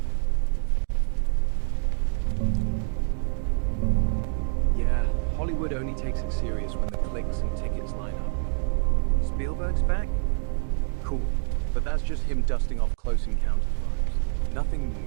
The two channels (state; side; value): silent; left; digital silence